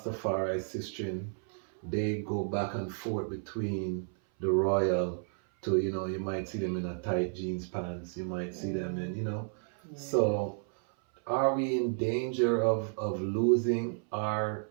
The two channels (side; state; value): left; silent; 56 dB below the other